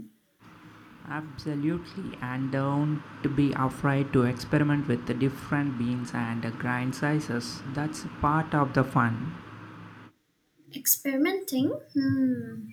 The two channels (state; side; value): identical; both; correlation 1.00